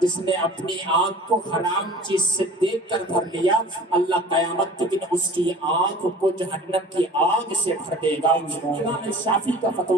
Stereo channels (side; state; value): both; normal; correlation 0.44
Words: جس نے اپنی آنکھ کو حرام چیز سے دیکھ کر بھر لیا, اللہ قیامت کے دن اس کی آنکھ کو جہنم کی آگ سے بھر دے گا. امام شافعی کا